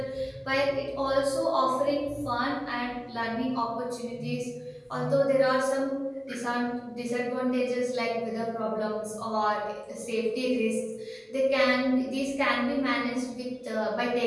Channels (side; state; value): both; identical; correlation 1.00